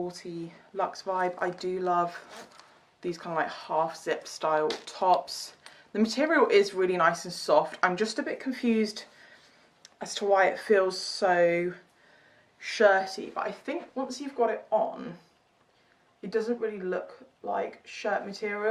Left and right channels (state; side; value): identical; both; correlation 1.00